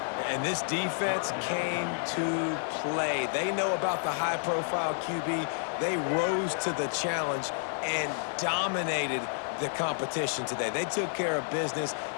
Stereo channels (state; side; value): silent; right; 56 dB below the other